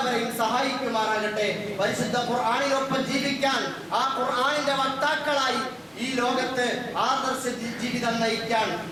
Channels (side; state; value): both; identical; correlation 1.00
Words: സഹായിക്കുമാറാകട്ടെ. പരിശുദ്ധ ഖുർആനിനൊപ്പം ജീവിക്കാൻ, ആ ഖുർആനിന്റെ വക്താക്കളായി ഈ ലോകത്ത് ആദർശ ജീവിതം നയിക്കാൻ,